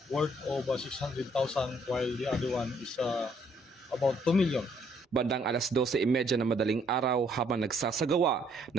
worth of 600,000 while the other one is about 2 million. Bandang alas 12:30 na madaling araw habang nagsasagawa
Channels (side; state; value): both; normal; correlation 0.66